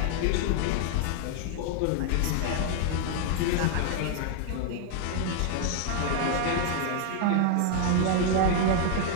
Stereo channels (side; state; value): both; different; correlation 0.00